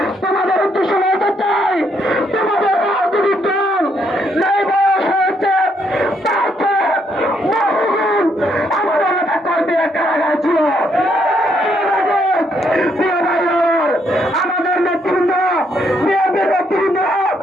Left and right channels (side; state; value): both; normal; correlation 0.73